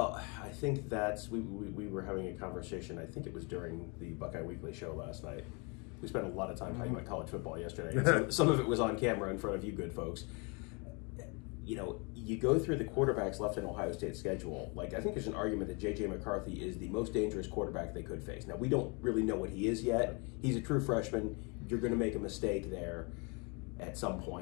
I think we were having a conversation, I think it was during the Buckeye Weekly show last night. We spent a lot of time talking about college football yesterday. And some of it was on camera in front of you good folks. You go through the quarterbacks left in Ohio State's schedule. Like, I think there's an argument that J.J. McCarthy is the most dangerous quarterback they could face. Now, we don't really know what he is yet. He's a true freshman. You're going to make a mistake there at some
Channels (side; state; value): right; quieter; 31.8 dB